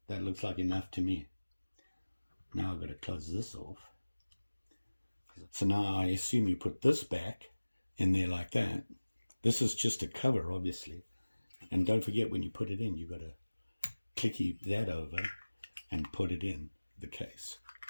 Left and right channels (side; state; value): both; inverted; correlation -1.00